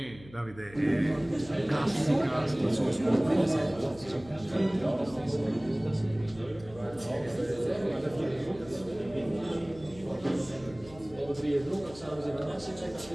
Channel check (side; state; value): left; noise; hum, 20 dB below the sound